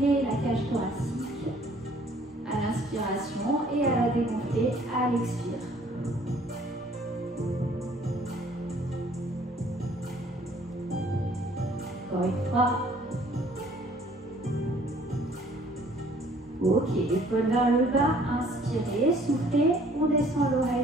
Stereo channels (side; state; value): both; normal; correlation 0.58